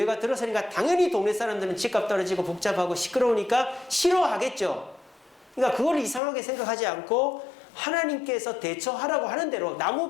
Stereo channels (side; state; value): right; drops out; at 6.2 s